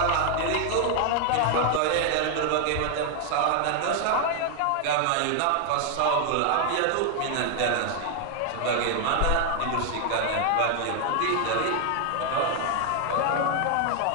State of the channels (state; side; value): different; both; correlation 0.00